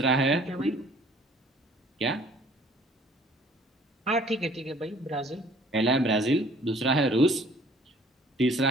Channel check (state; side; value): normal; both; correlation 0.55